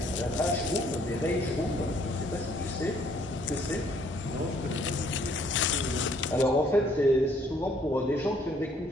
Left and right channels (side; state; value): both; normal; correlation 0.64